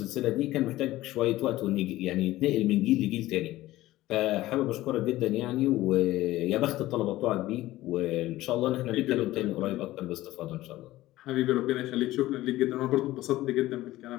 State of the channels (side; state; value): right; quieter; 16.5 dB